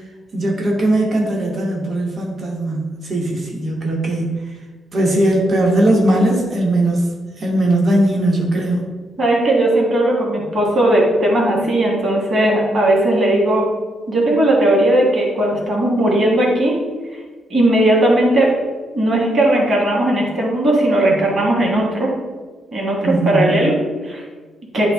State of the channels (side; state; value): both; normal; correlation 0.78